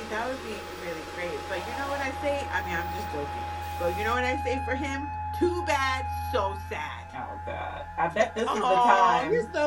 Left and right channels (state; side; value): identical; both; correlation 1.00